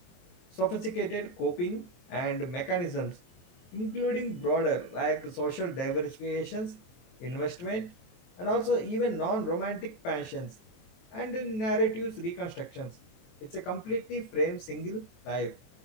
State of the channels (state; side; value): late; right; 23 ms